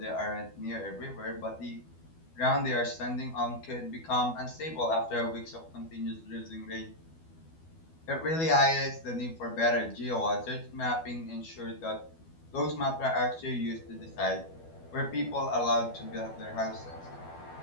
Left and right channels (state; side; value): late; right; 12 ms